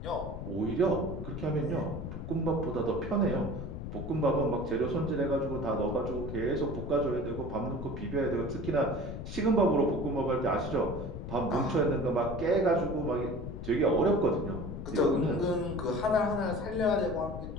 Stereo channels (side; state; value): left; noise; rumble, 7 dB below the sound